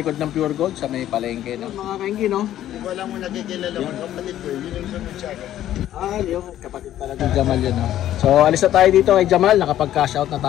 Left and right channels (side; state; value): right; quieter; 12.4 dB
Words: ng Pure Gold, sa may palengke, no? Mga kaingi, no? Kung wala mo nagkikilala ko, kapatid ko, yun yung sumunod. Yung kapatid pala ng Jamal yun, no? So alis na tayo dito kay Jamal, nakapag-cash out na